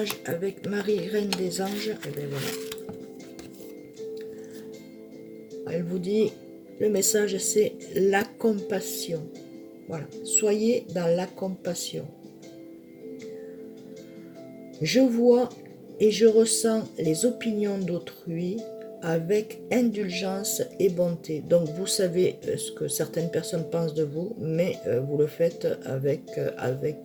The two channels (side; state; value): both; identical; correlation 1.00